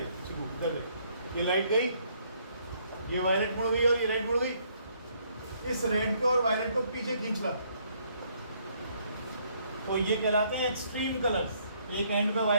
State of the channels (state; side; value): inverted; both; correlation -0.68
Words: देख, ये लाइट गई, ये वायलेट मुड़ गई और ये रेड मुड़ गई। इस रेड को और वायलेट को पीछे खींच ला, तो ये कहलाते हैं एक्सट्रीम कलर्स। एक एंड पे